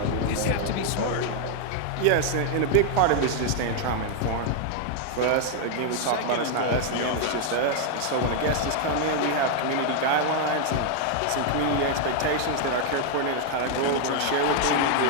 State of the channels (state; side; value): different; both; correlation 0.00